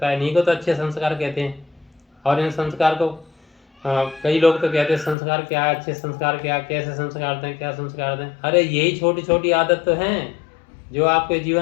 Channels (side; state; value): right; drops out; at 5.2 s